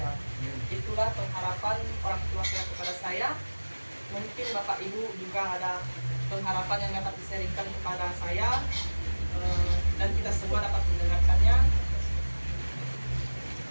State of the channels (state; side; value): inverted; both; correlation -1.00